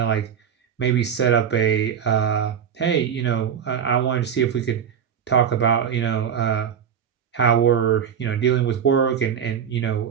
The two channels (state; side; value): quieter; left; 8.0 dB